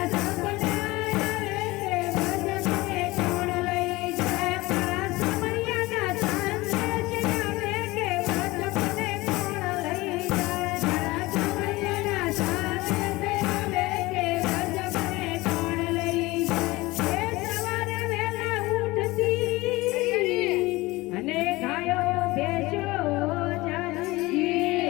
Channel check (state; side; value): quieter; right; 20.8 dB